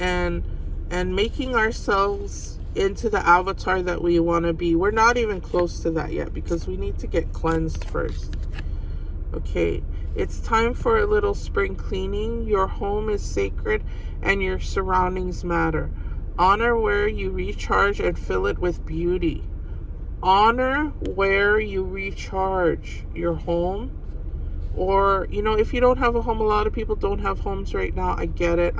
making ourselves into the avatar that we want to be. We're not even close to that yet because we need to get cleansed first. Okay, it's time for a little spring cleaning. Your home is sacred and your surroundings matter. Honor where you recharge and fill it with beauty. Honor where you recharge, your home. Or, if you don't have a home, a lot of people don't have homes right now. I get it.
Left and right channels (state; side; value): identical; both; correlation 1.00